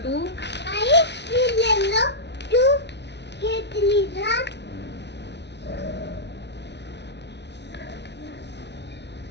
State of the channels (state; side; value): late; right; 0.50 ms